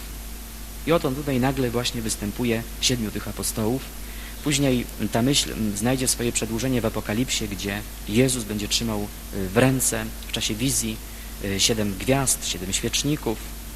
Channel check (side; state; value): both; identical; correlation 1.00